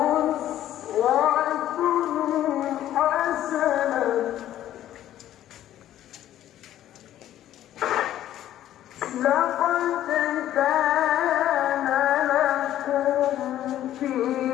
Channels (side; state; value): right; quieter; 12.4 dB